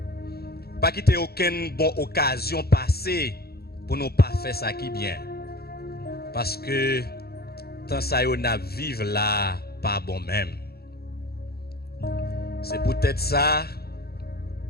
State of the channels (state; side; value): late; right; 0.46 ms